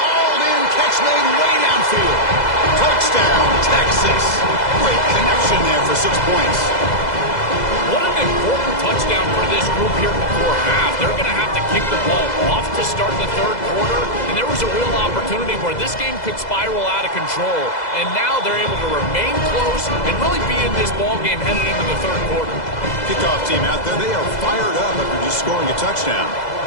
in. Catch made way downfield. Touchdown, Texas. Great connection there for 6 points. What an important touchdown for this group here before half. They're going to have to kick the ball off to start the third quarter, and there was a real opportunity where this game could spiral out of control, and now they're able to remain close and really be in this ball game headed into the third quarter. Kickoff team out there, they are fired up after just scoring a touchdown.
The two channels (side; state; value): right; late; 2.0 ms